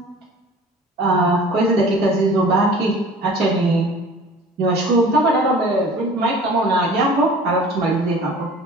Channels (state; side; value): normal; both; correlation 0.45